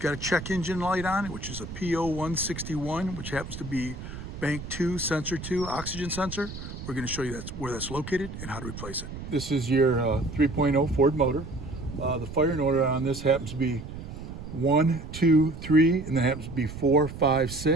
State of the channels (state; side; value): noise; right; rumble, 10 dB below the sound